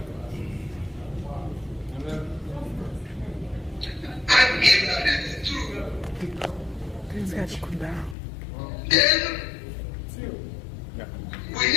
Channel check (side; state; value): right; drops out; at 8.2 s